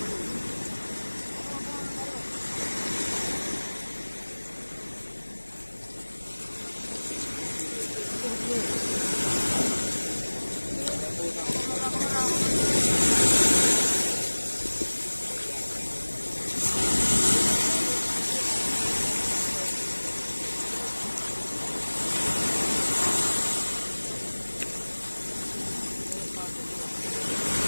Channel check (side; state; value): both; inverted; correlation -1.00